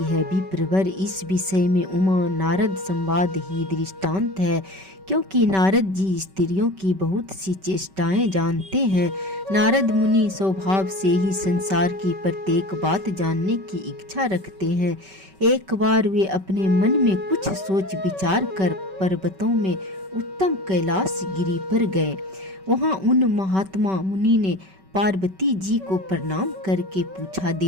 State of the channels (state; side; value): late; left; 5.2 ms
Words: है। विप्रवर, इस विषय में उमा नारद संवाद ही दृष्टांत है, क्योंकि नारद जी स्त्रियों की बहुत सी चेष्टाएं जानते हैं। नारद मुनि स्वभाव से ही संसार की प्रत्येक बात जानने की इच्छा रखते हैं। एक बार वे अपने मन में कुछ सोच विचार कर पर्वतों में उत्तम कैलाश गिरी पर गए। वहां उन महात्मा मुनि ने पार्वती जी को प्रणाम करके पूछा,